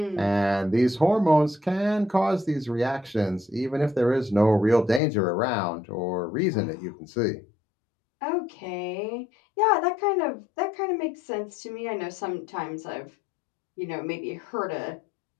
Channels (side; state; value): right; drops out; at 5.0 s